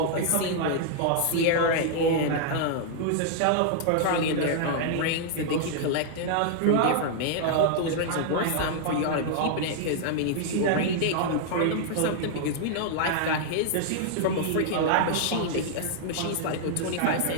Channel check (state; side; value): different; both; correlation -0.01